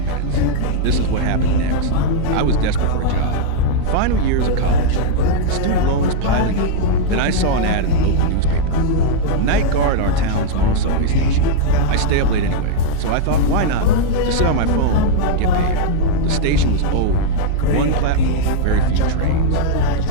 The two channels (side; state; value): both; different; correlation -0.01